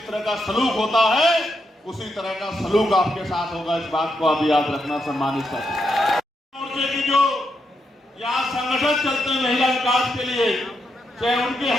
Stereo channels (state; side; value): normal; both; correlation 0.82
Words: तरह का सलूक होता है उसी तरह का सलूक आपके साथ होगा। इस बात को आप याद रखना। सम्मानित साथी, मोर्चे की जो यहाँ संगठन चलते हैं महिला विकास के लिए, चाहे उनके